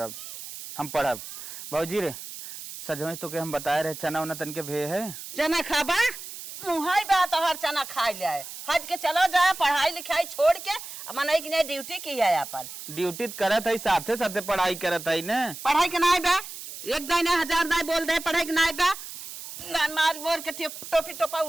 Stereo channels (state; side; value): noise; right; hiss, 11 dB below the sound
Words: हम पढ़ब। भौजी रे सजमई तो के हम बताए रहे चना उना तन के भे है। चना खाबा मुहाई बात हर चना खाई ले हज के चलो जाए, पढ़ाई लिखाई छोड़ के मन की नहीं ड्यूटी की है अपन। ड्यूटी करत है, साथे साथे पढ़ाई करत है ना। पढ़ाई के ना बा, एक दाने 1000 दाने बोल दे पढ़ाई के ना बा, मार बोल के टोपी टोपा